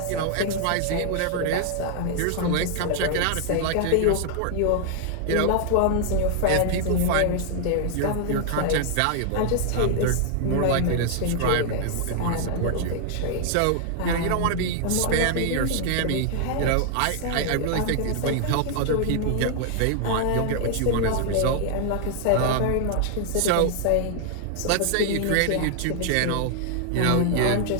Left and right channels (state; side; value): different; both; correlation 0.00